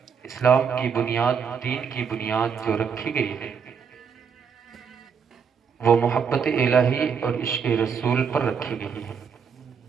اسلام کی بنیاد دین کی بنیاد جو رکھی گئی ہے وہ محبت الہی اور عشق رسول پر رکھی گئی ہے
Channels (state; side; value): quieter; left; 6.6 dB